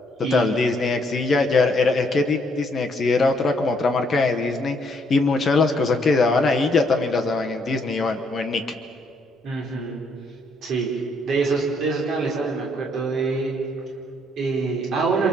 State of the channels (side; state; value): both; normal; correlation 0.70